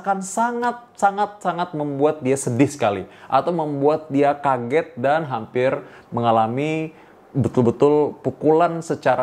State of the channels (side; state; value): both; identical; correlation 1.00